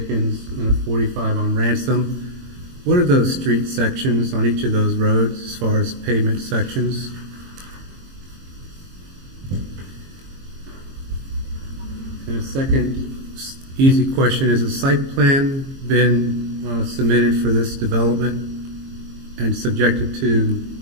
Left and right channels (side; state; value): left; late; 22 ms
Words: and a 45 on Ransom. What are those street sections on each of those roads as far as pavement sections? And a second easy question, has a site plan been submitted for this development and subjected to